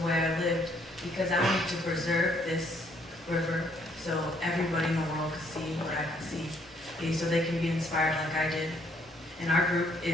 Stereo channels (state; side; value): normal; both; correlation 0.67